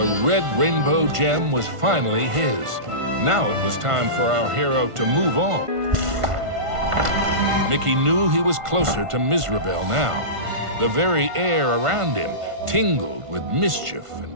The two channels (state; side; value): late; left; 1.5 ms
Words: red rainbow gem was finally his. Now it was time for our hero to move on. Mickey knew he was closer to Mizrabel now. The very air around him tingled with mischief